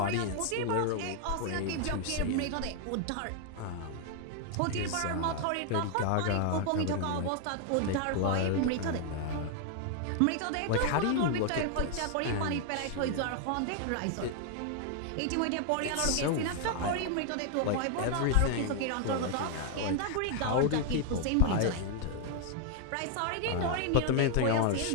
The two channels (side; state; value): both; different; correlation 0.00